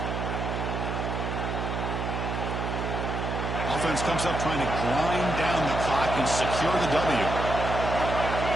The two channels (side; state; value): right; noise; hum, 3 dB below the sound